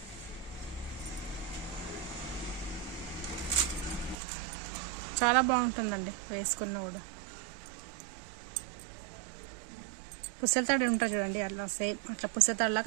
చాలా బాగుంటుందండి వేసుకున్నా కూడా. పుస్తల తాడు ఉంటుంది చూడండి, అలా సేమ్ అట్లా పుస్తల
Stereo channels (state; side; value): drops out; left; at 4.2 s